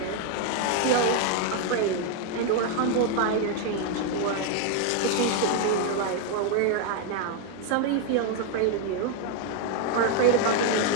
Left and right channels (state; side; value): different; both; correlation 0.01